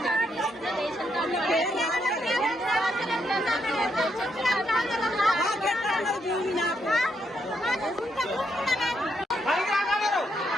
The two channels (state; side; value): normal; both; correlation 0.78